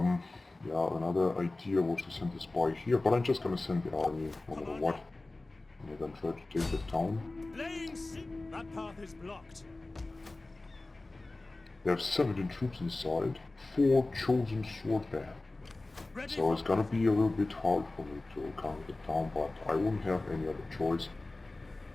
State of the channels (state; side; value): quieter; right; 3.0 dB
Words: Yeah, another idea was to send the spy here, but I'm just gonna send the army no matter what. And they're gonna try to take the town. That path is blocked. They have 17 troops inside, 4 chosen swordband. So it's gonna be a little bit hard for me to conquer the town, but I wouldn't have any other choice.